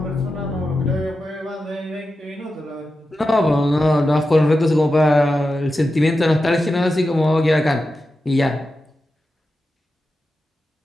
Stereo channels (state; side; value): normal; both; correlation 0.91